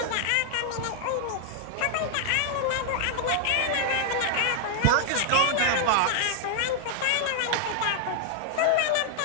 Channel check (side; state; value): both; different; correlation -0.01